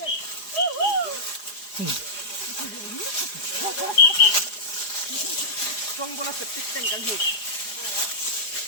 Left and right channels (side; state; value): right; late; 4.9 ms